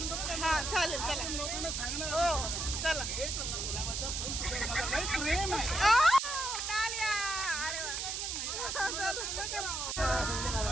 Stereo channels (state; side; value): noise; right; hiss, 2 dB below the sound